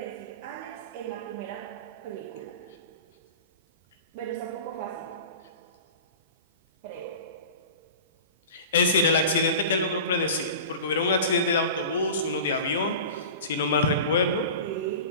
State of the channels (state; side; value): inverted; both; correlation -0.34